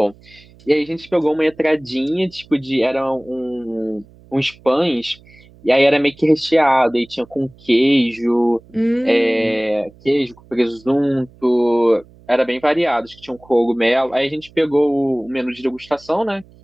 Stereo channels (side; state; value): right; noise; hum, 26 dB below the sound